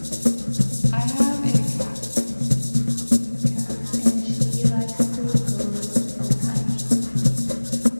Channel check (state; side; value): inverted; both; correlation -1.00